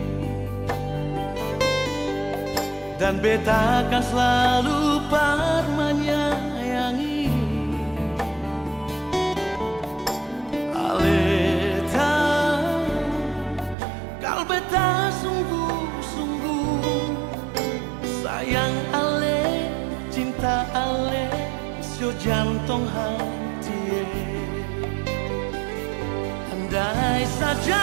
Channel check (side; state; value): left; drops out; at 13.8 s